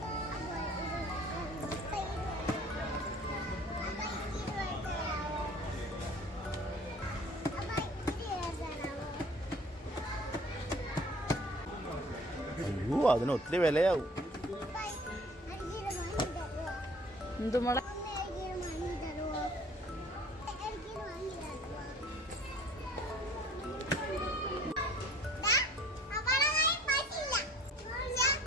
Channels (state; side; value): normal; both; correlation 0.50